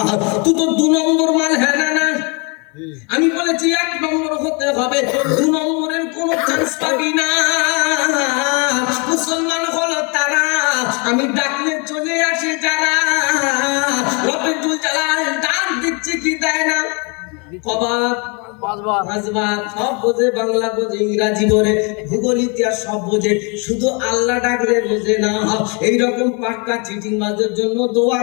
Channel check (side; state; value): right; quieter; 33.0 dB